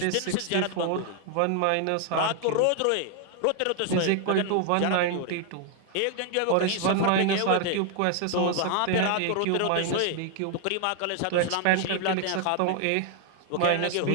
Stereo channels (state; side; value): different; both; correlation 0.00